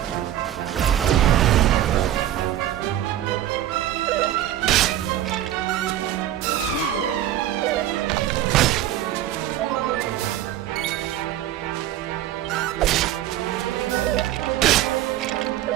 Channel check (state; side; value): quieter; left; 12.6 dB